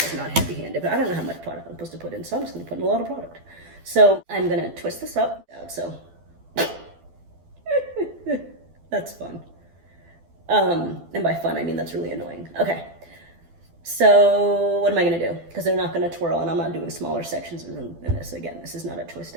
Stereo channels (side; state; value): left; late; 12 ms